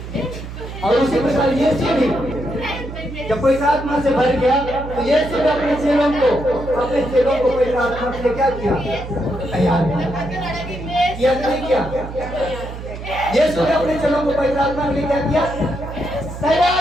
और उसी प्रकार यीशु भी जब पवित्र आत्मा से भर गया तो यीशु ने अपने चेलों को पवित्र आत्मा से क्या किया? तैयार किया नहीं किया? यीशु ने अपने चेलों को पवित्र आत्मा के लिए क्या किया?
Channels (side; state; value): right; noise; hum, 10 dB below the sound